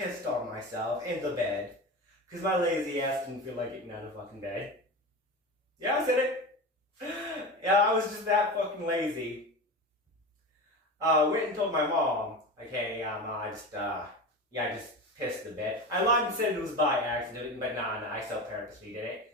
on myself in the bed, because my lazy ass didn't feel like getting out of fucking bed. Yeah, I said it. Yeah, I was just that fucking lazy. Went and told my mom, okay, I just pissed a bit. I lied and said it was by accident, but nah, I still purposely did it.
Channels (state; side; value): normal; both; correlation 0.27